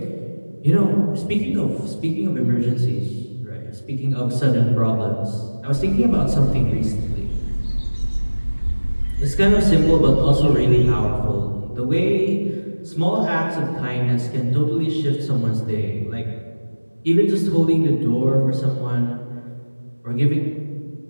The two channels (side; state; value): both; inverted; correlation -1.00